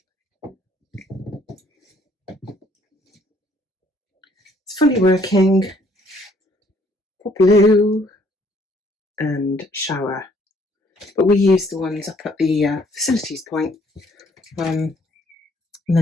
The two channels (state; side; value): normal; both; correlation 0.64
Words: It's fully working. Blue and shower, but we use the ones up at the facilities point. And